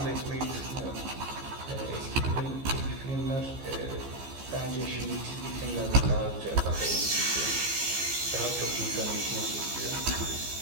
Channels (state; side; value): late; left; 15 ms